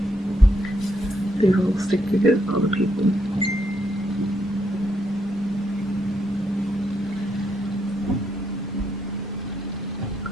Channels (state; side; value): normal; both; correlation 0.76